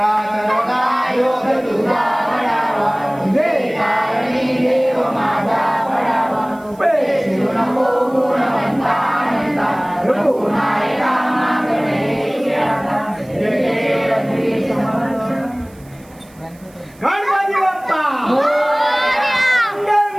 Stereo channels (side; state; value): right; noise; hiss, 28 dB below the sound